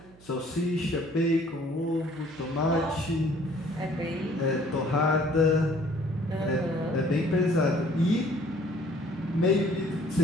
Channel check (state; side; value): noise; right; hum, 24 dB below the sound